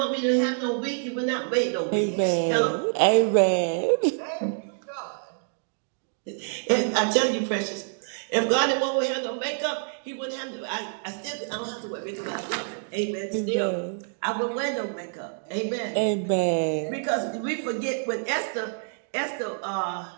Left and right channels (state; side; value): silent; left; digital silence